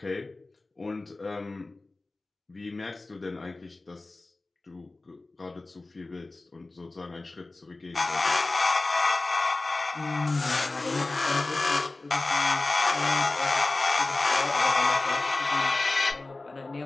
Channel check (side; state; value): right; quieter; 3.2 dB